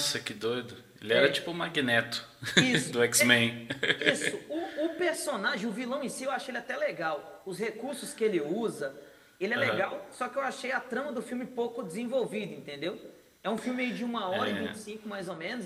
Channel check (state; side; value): identical; both; correlation 1.00